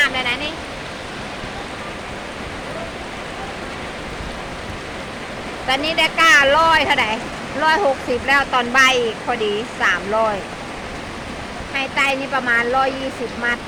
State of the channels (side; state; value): both; identical; correlation 1.00